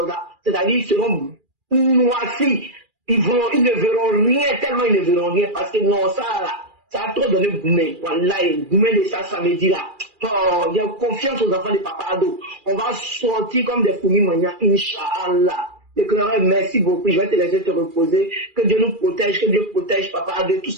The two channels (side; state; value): left; late; 2.4 ms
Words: là. C'est-à-dire ils seront noircis. Ils ne verront rien, tellement ils ne verront rien. Parce que non, ça là, ça a trop donné Goumé. Voilà, Goumé de ça samedi là. Oh, il y a confiance aux enfants de Papa Ado. On va sortir comme des fourmis manières, Inch'Allah. L'éclaireur, merci beaucoup. Je vais te laisser te reposer. Que Dieu nous protège, que Dieu protège Papa Ado, tous